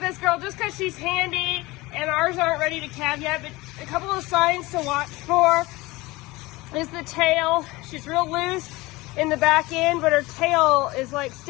this girl just because she's handy and ours aren't ready to calve yet, but a couple of signs to watch for is the tail. She's real loose in the back end, but her tail is like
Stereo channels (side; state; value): right; quieter; 21.2 dB